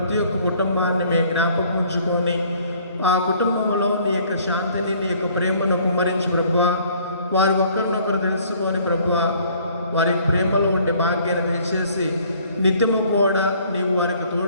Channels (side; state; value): both; inverted; correlation -0.58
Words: ఒక్క కుటుంబాన్ని మేము జ్ఞాపకం ఉంచుకొని ఆ కుటుంబంలో నీ యొక్క శాంతిని, నీ యొక్క ప్రేమను కుమ్మరించి ప్రభువా, వారు ఒకరినొకరు తెలుసుకొని ప్రభువా, వారి ప్రేమలో ఉండే భాగ్యాన్ని దయచేసి నిత్యము కూడా నీవు వారికి